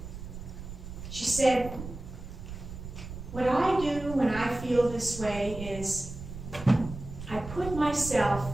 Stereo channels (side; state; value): right; noise; rumble, 11 dB below the sound